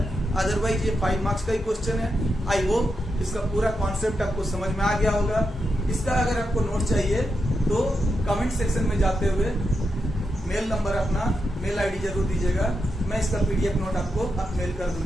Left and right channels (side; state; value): both; normal; correlation 0.86